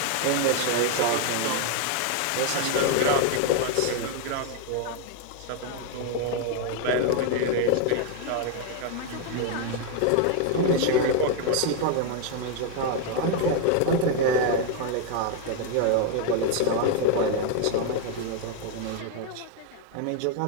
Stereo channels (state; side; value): different; both; correlation 0.00